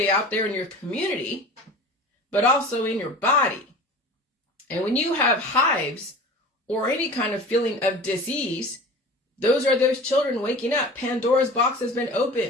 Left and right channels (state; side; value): normal; both; correlation 0.38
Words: out there in your community, but also in your body. And when you have hives or any kind of feeling of disease, those are those children waking up. Pandora's box has been